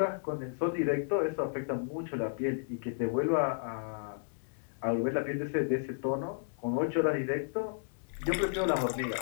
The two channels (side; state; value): right; silent; digital silence